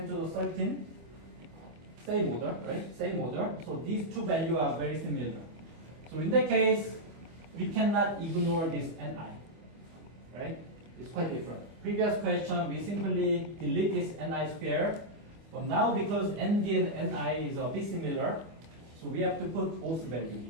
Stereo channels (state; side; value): late; left; 25 ms